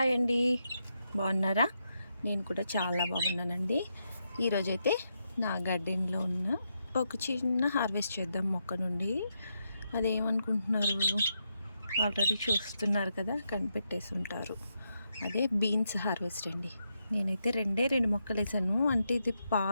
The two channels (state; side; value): inverted; both; correlation -0.83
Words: అండి, బాగున్నారా? నేను కూడా చాలా బాగున్నానండి. ఈరోజైతే నా గార్డెన్లో ఉన్న ఒక చిన్న హార్వెస్ట్ చేద్దాం మొక్క నుండి. అదేమనుకుంటున్నారు? ఆల్రెడీ చూస్తున్నారు కదా, కనిపెట్టేసి ఉంటారు. అదే బీన్స్ హార్వెస్ట్ అండి. నేనైతే రెండు మొక్కలు వేసాను. అంటే ఇది